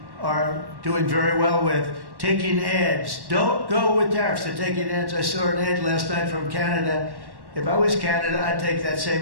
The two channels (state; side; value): late; left; 1.1 ms